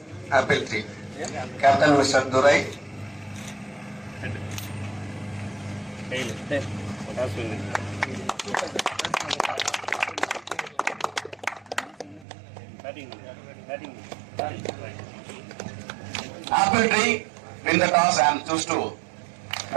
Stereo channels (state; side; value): drops out; left; at 12.2 s